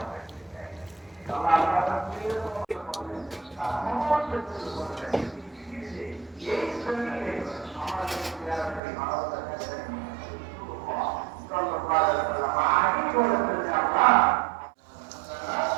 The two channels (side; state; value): left; drops out; at 8.8 s